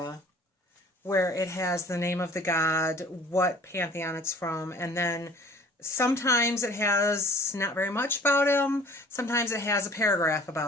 where it has the name of the god, what pantheon it's from, and then sometimes it has not very much about him. Sometimes it has a paragraph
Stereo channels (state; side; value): normal; both; correlation 0.50